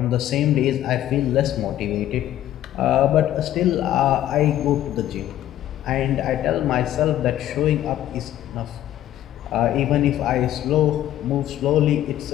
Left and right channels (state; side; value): quieter; right; 12.7 dB